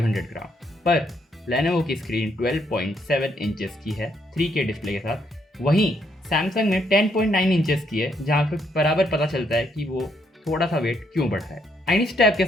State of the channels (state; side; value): normal; both; correlation 0.73